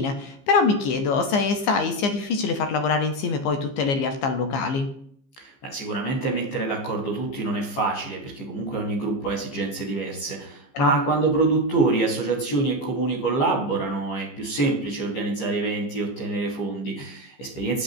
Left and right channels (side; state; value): right; late; 15 ms